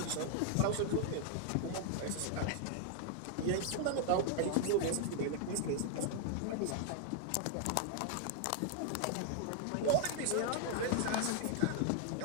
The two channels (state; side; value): different; both; correlation 0.00